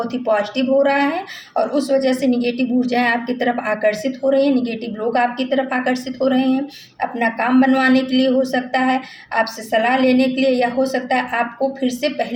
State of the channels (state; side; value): identical; both; correlation 1.00